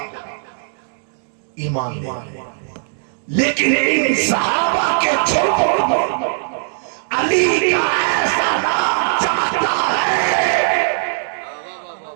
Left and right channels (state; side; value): silent; left; digital silence